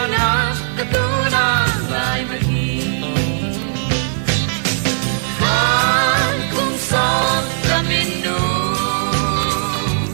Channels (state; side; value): silent; left; digital silence